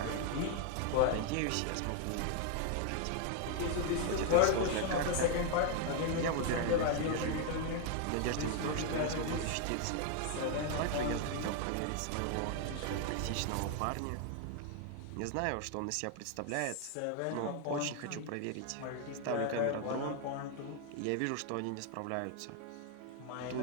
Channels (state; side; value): different; both; correlation 0.00